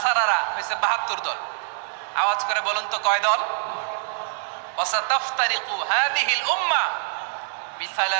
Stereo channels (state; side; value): silent; left; digital silence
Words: হয়েছে 72 দল। আওয়াজ করে বলুন তো, কয় দল? ওয়াসাতাফতারিকু হাযিহিল উম্মাহ